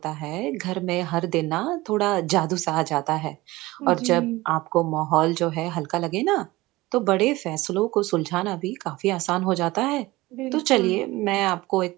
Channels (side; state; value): left; quieter; 19.7 dB